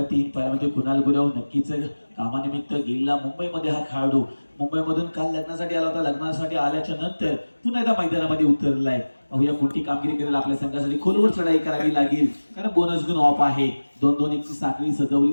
3 पाहायला मिळतो कुणाल गुरव. नक्कीच कामानिमित्त गेलेला मुंबईमध्ये हा खेळाडू. मुंबईमधून काल लग्नासाठी आला होता. लग्नासाठी आल्याच्या नंतर पुन्हा एकदा मैदानामध्ये उतरलाय. पाहूया कोणती कामगिरी करेल आपल्या संघासाठी. खोलवर चढाई करावी लागेल कारण बोनस गुण ऑफ आहे. 2-2 ची साखळी सजवली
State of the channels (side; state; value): both; inverted; correlation -1.00